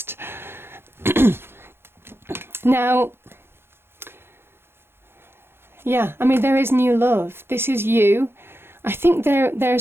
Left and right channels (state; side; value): late; left; 0.11 ms